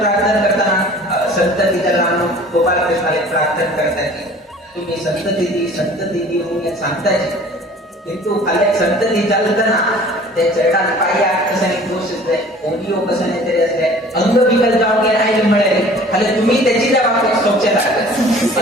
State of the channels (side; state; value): both; normal; correlation 0.48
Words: करताना संतती त्याला गोपालकृष्णाला प्रार्थना करताय तुम्ही संतती म्हणून सांगताय किंतु खाली संतती चालताना त्या चरणात पाया कशाने दोष असले ओडिओ कशाने तरी असले अंग विकल जाऊन गेला आहे मिळेल खाली तुम्ही त्याची त्या बाबतीत स्वच्छता